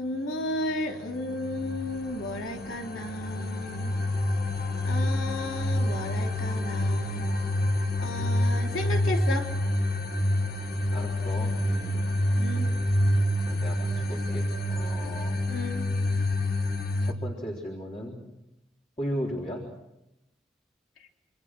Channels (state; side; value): normal; both; correlation 0.82